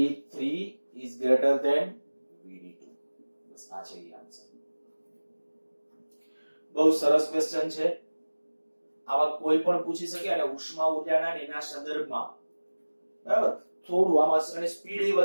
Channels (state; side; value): inverted; both; correlation -1.00